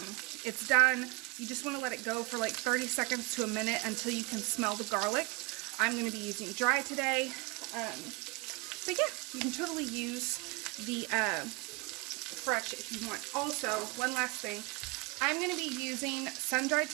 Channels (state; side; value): quieter; left; 27.1 dB